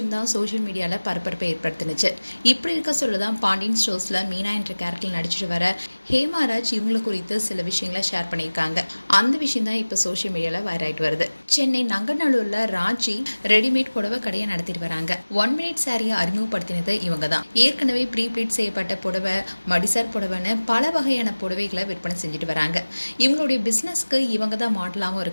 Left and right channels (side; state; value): both; inverted; correlation -1.00